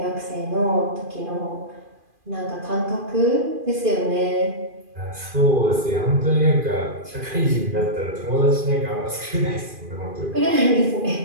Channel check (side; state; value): left; late; 2.4 ms